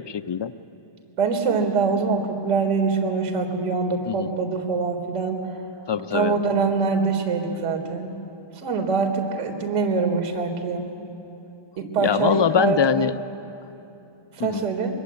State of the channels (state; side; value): late; right; 1.2 ms